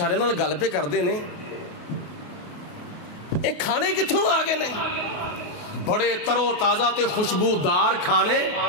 نال گل پہ کردے نے, اے کھانے کتھوں آ گئے نے, بڑے ترو تازہ تے خوشبودار کھانے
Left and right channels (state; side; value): late; right; 28 ms